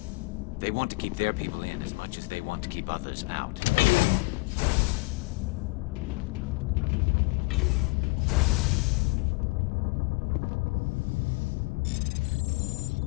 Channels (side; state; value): right; quieter; 28.0 dB